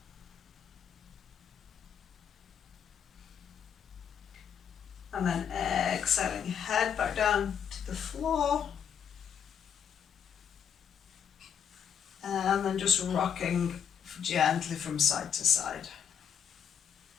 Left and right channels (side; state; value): right; quieter; 8.0 dB